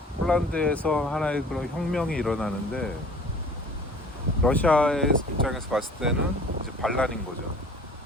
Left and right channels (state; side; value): normal; both; correlation 0.47